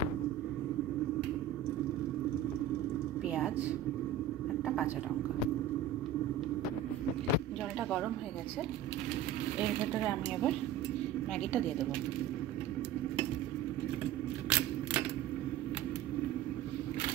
পেঁয়াজ, একটা কাঁচা লঙ্কা। জলটা গরম হয়ে গেছে, এর ভেতরে আমি এবার ম্যাগিটা দিয়ে দেবো।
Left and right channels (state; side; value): quieter; left; 9.2 dB